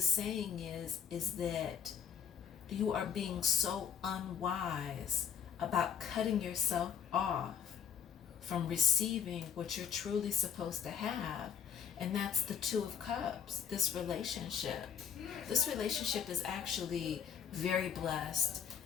saying is that you are being so unwise about cutting yourself off from receiving what you're truly supposed to have. And that's the Two of Cups, this relationship. This relationship is actually very blessed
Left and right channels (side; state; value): right; quieter; 7.9 dB